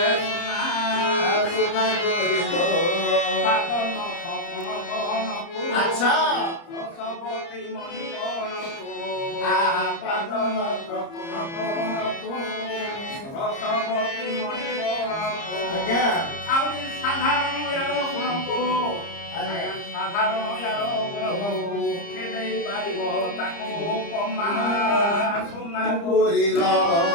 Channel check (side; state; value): right; late; 30 ms